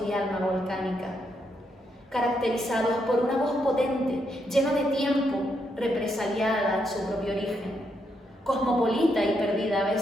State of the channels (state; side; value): normal; both; correlation 0.79